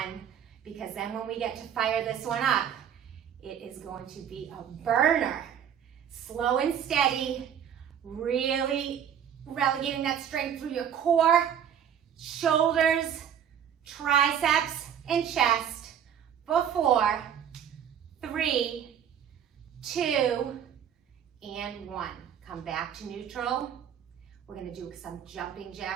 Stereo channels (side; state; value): left; quieter; 8.9 dB